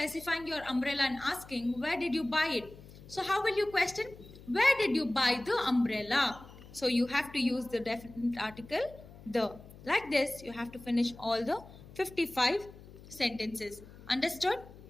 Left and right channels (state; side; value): noise; left; hum, 19 dB below the sound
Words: your umbrella and asking where did you buy it? So how will you question? Where did you buy the umbrella? So you have to use the definite article the. Like this, you have to finish all the 55 sentences. Understood?